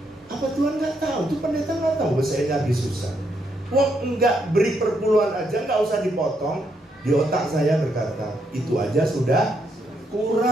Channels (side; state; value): both; normal; correlation 0.77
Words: Apa Tuhan nggak tahu? Itu pendeta nggak tahu bahwa saya lagi susah. Wah, enggak beri perpuluhan aja, nggak usah dipotong. Di otak saya berkata, itu aja sudah